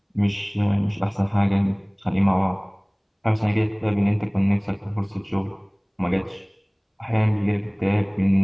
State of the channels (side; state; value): both; identical; correlation 1.00